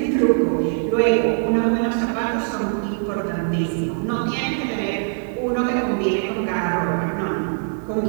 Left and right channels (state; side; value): silent; left; 64 dB below the other